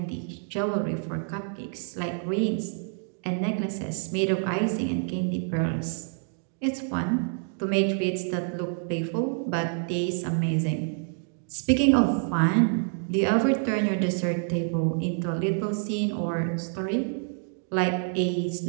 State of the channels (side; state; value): left; silent; 60 dB below the other